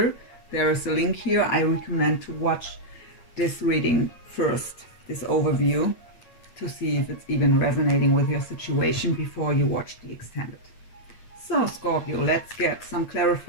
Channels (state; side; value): late; right; 8.9 ms